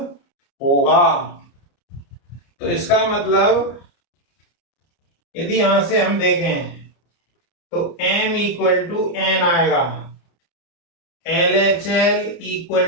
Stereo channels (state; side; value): late; right; 28 ms